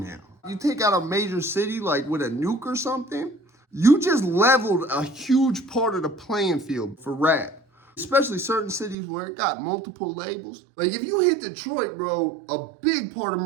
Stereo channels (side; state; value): left; drops out; at 9.0 s